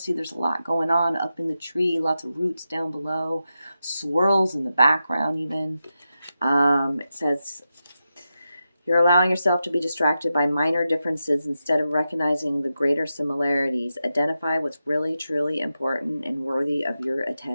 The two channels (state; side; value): inverted; both; correlation -0.89